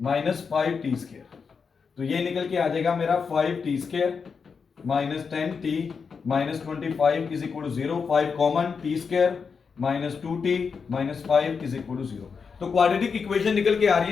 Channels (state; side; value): quieter; right; 5.7 dB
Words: minus 5t square, तो ये निकल के आ जाएगा मेरा 5t square minus 10t minus 25 is equal to 0, 5 common, t square minus 2t minus 5 is equal to 0। तो क्वाड्रेटिक इक्वेशन निकल के आ रही